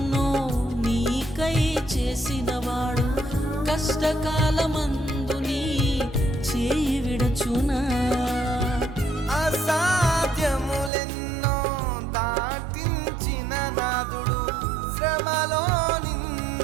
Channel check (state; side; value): drops out; left; at 10.9 s